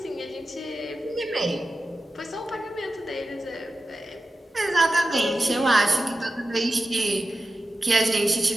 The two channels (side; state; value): both; normal; correlation 0.92